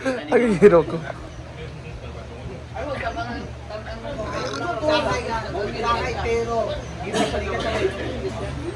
Ang hero ko. Sakay, pero...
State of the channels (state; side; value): identical; both; correlation 1.00